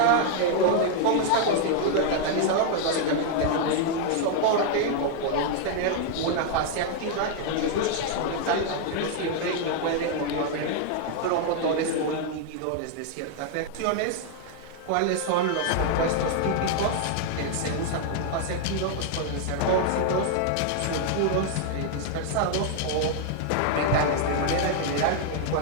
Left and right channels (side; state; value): both; different; correlation 0.00